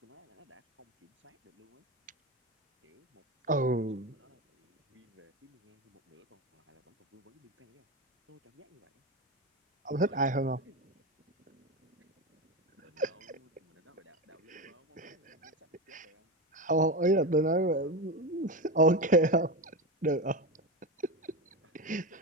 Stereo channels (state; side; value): normal; both; correlation 0.18